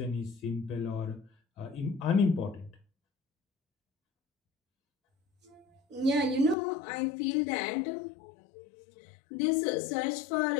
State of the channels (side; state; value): right; drops out; at 6.6 s